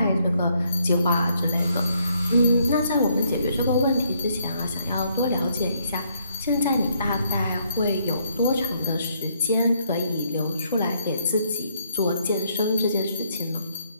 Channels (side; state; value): both; inverted; correlation -0.71